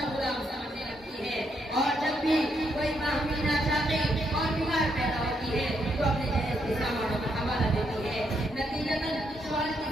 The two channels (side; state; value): both; normal; correlation 0.77